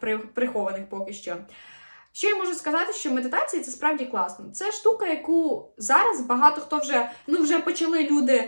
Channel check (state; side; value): inverted; both; correlation -1.00